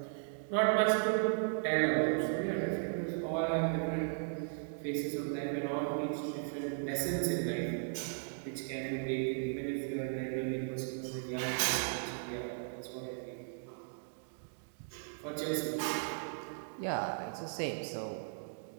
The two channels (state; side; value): silent; left; digital silence